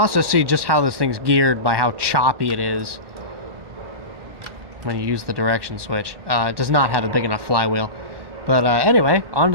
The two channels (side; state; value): left; late; 1.2 ms